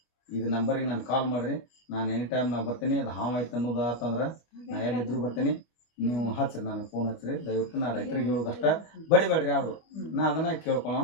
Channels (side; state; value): right; late; 25 ms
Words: ಇದು ನಂಬರಿಗೆ ನಾನು ಕಾಲ್ ಮಾಡಿರಿ. ನಾನು ಎನಿ ಟೈಮ್ ನಾ ಬರ್ತೀನಿ. ಅದು ಹಾವಾಯ್ತು ಅನ್ನೋದು ಆತಂದ್ರೆ ನಾ ಎಲ್ಲಿದ್ರು ಬರ್ತೀನಿ. ನೀವು ಹಚ್ಚಿರಿ, ನನಗೆ ಫೋನ್ ಹಚ್ಚಿರಿ. ದಯವಿಟ್ಟು ನಾ ರೈತರಿಗೆ ಹೇಳೋದಷ್ಟ ಬಡಿಬೇಡ್ರಿ ಯಾರು. ನಾ ಅದನ್ನ ಕೇಳ್ಕೊಳ್ಳೋಣ.